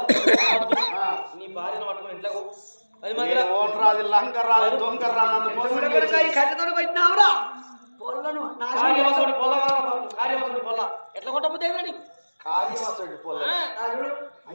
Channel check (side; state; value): both; inverted; correlation -1.00